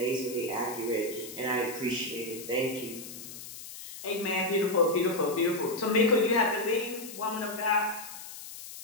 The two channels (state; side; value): noise; left; hiss, 12 dB below the sound